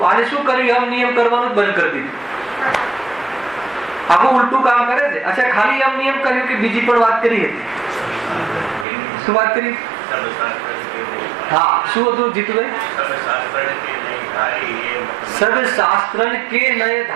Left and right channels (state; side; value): drops out; left; at 8.8 s